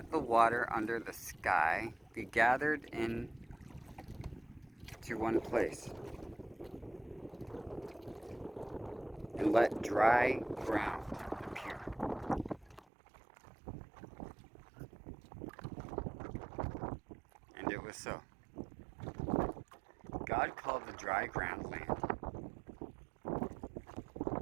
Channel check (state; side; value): drops out; left; at 12.9 s